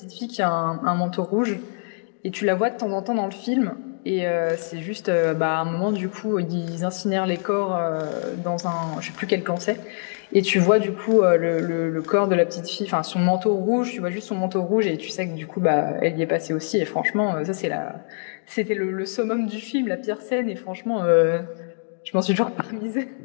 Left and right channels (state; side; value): silent; right; digital silence